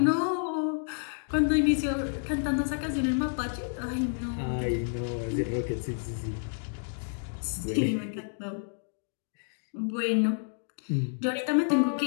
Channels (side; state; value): right; silent; digital silence